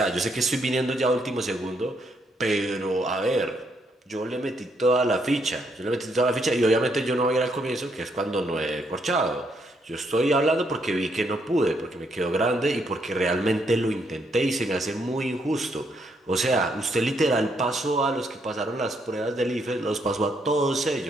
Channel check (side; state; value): both; normal; correlation 0.74